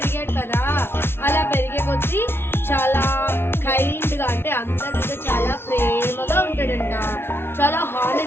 కదా, అలా పెరిగే కొద్దీ చాలా కైండ్ గా అంటే అందరి మీద చాలా ప్రేమగా ఉంటాడంట. చాలా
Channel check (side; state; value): right; late; 0.12 ms